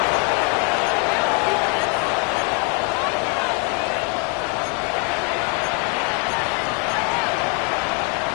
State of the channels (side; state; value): right; quieter; 35.6 dB